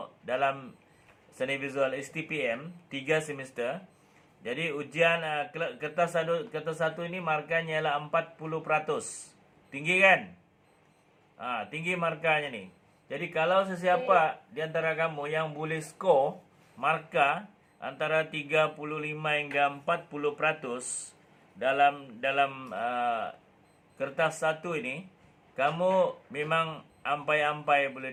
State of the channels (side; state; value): both; identical; correlation 1.00